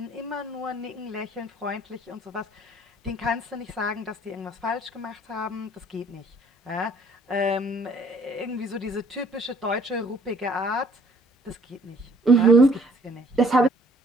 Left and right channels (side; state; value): both; normal; correlation 0.59